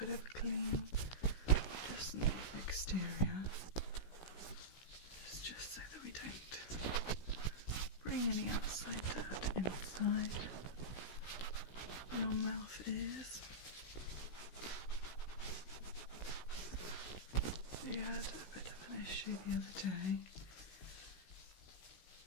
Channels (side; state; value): right; late; 16 ms